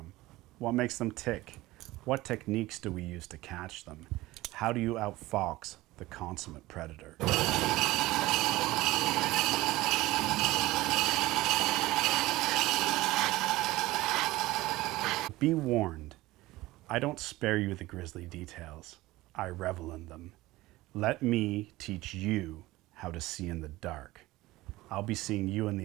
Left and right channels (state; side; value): quieter; left; 18.6 dB